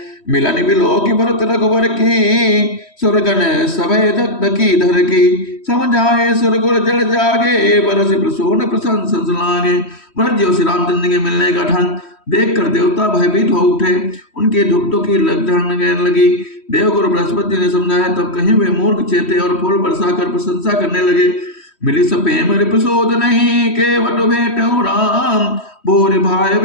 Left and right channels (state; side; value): late; right; 3.1 ms